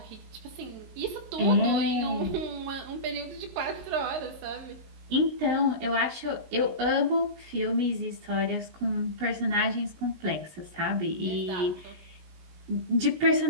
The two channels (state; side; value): late; left; 19 ms